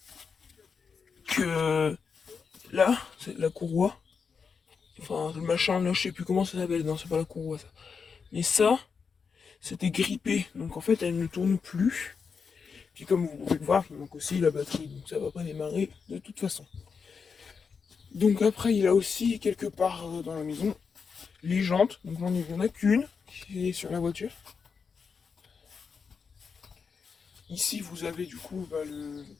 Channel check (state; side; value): quieter; right; 5.7 dB